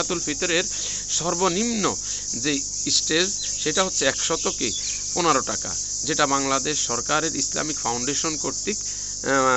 ফিতরের সর্বনিম্ন যে স্টেজ সেটা হচ্ছে ১১৫ টাকা, যেটা বাংলাদেশ সরকারের ইসলামিক ফাউন্ডেশন কর্তৃক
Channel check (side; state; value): right; noise; hum, 16 dB below the sound